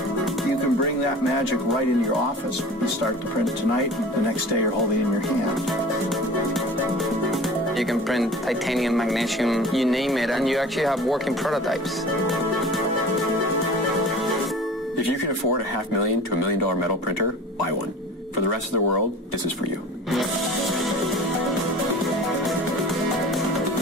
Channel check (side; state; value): both; normal; correlation 0.40